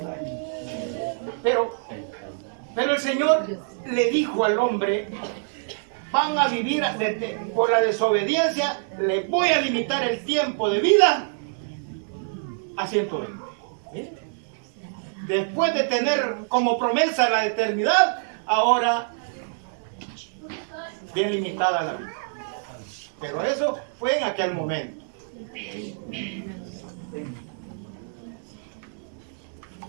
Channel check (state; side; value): silent; left; digital silence